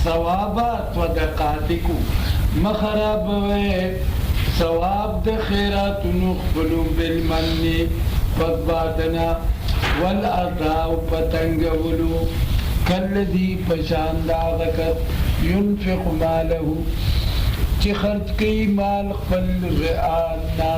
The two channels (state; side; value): identical; both; correlation 1.00